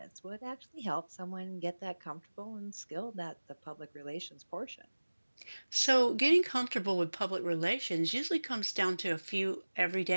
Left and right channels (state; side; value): inverted; both; correlation -1.00